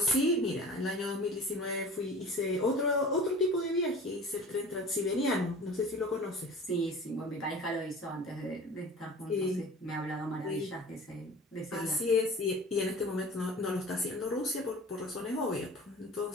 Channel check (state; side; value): normal; both; correlation 0.40